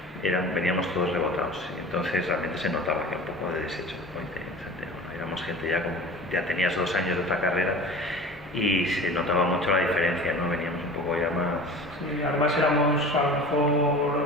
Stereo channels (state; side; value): normal; both; correlation 0.38